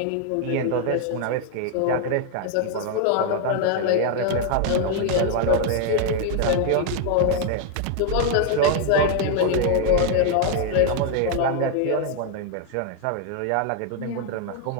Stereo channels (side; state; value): both; different; correlation 0.00